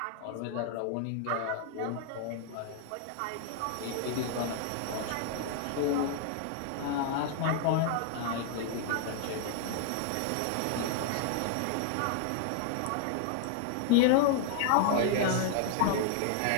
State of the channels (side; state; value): both; different; correlation -0.01